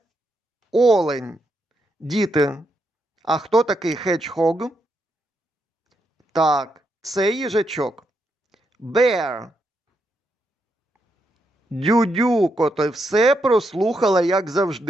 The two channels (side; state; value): both; normal; correlation 0.81